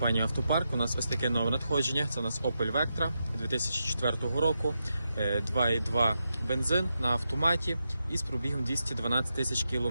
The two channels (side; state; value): both; inverted; correlation -0.86